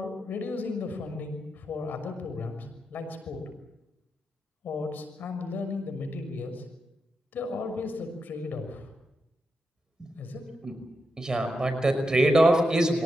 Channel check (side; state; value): both; normal; correlation 0.86